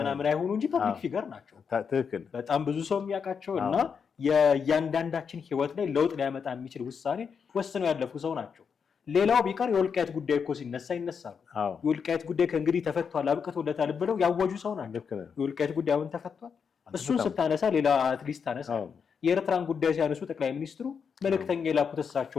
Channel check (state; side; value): quieter; right; 6.4 dB